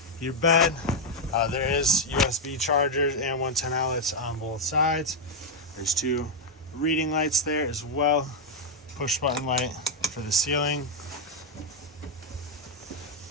your bed. There is USB chargers and 110 outlets on both sides. There's two reading lights there as well. Push button light for the ceiling.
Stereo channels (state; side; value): normal; both; correlation 0.01